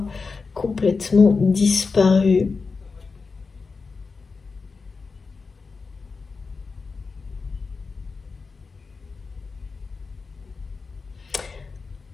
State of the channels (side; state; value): right; quieter; 4.6 dB